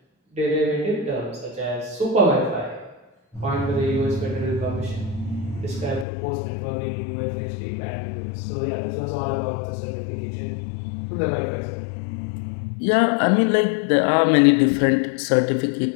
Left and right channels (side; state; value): right; drops out; at 6.1 s